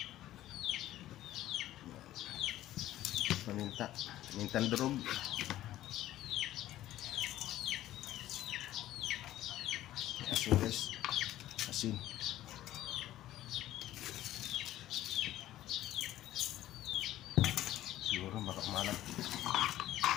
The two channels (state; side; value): quieter; right; 14.0 dB